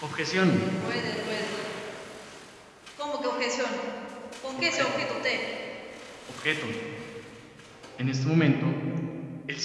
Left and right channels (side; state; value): both; identical; correlation 1.00